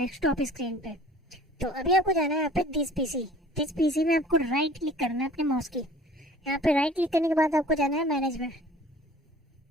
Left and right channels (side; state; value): both; normal; correlation 0.48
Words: स्क्रीन पे। तो अभी आपको जाना है यहाँ पे दिस पीसी में आपको राइट क्लिक करना है अपने माउस की। यहाँ पे राइट क्लिक करने के बाद आपको जाना है मैनेज में।